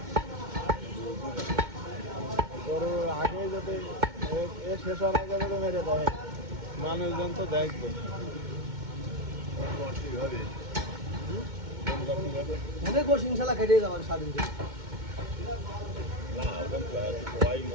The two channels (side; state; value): left; late; 2.2 ms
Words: গরু আগে যদি এ শেষ হওয়ার আগে যদি মেরে দেয়, মানুষজন তো দেখবে। অনেক গোশ ইনশাল্লাহ কেটে যাবেন স্বাধীন করে